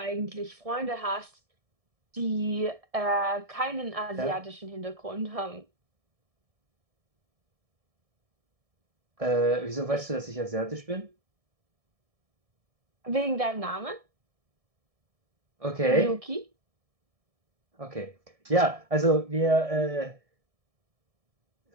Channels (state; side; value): late; left; 1.7 ms